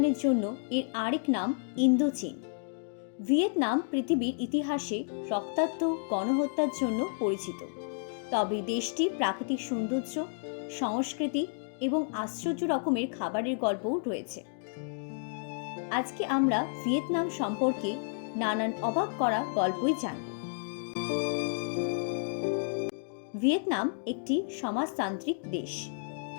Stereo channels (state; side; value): silent; right; digital silence